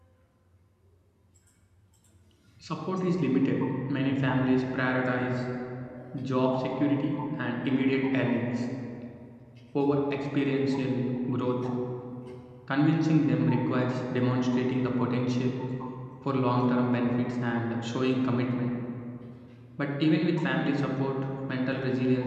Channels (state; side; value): identical; both; correlation 1.00